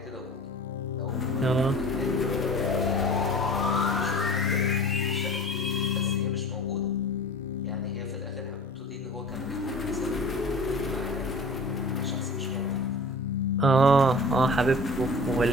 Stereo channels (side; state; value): both; normal; correlation 0.42